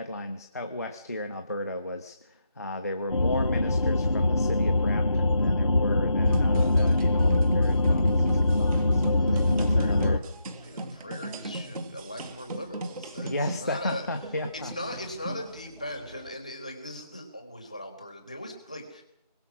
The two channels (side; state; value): both; inverted; correlation -0.82